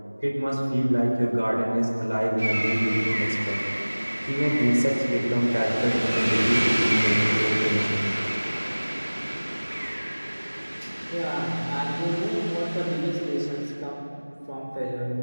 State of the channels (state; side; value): inverted; both; correlation -1.00